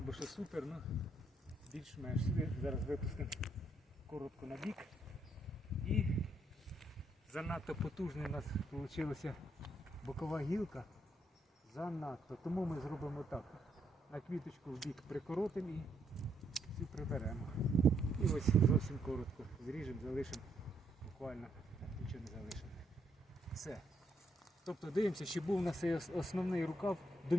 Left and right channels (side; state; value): both; normal; correlation 0.75